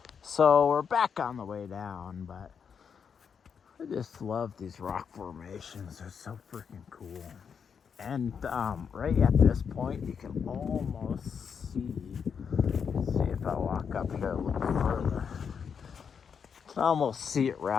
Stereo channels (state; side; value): quieter; right; 6.7 dB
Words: So we're back on the way down, but I just love these rock formations. They're so freaking cool. And right at this point, you can almost see if I walk up here a little further, you can almost see it